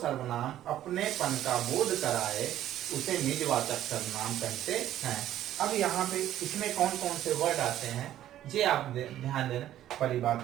अपनेपन का बोध कराए उसे निजवाचक सर्वनाम कहते हैं। अब यहाँ पे इसमें कौन कौन से वर्ड आते हैं ये आप ध्यान देना वाली बात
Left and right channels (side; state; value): left; quieter; 12.5 dB